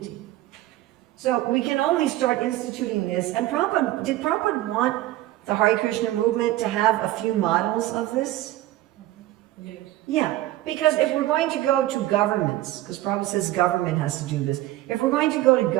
So we can only start instituting this. And did Prabhupada want the Hare Krishna movement to have a few models of this? Yes. Yeah, because if we're going to go to governments, because Prabhupada says government has to do this, if we're going to go to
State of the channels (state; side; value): quieter; left; 15.7 dB